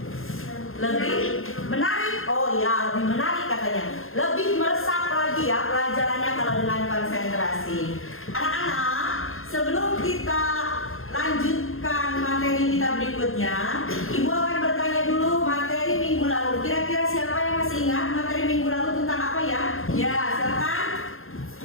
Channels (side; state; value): right; late; 0.60 ms